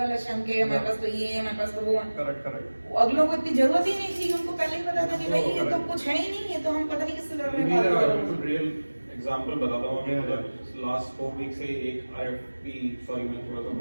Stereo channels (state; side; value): inverted; both; correlation -1.00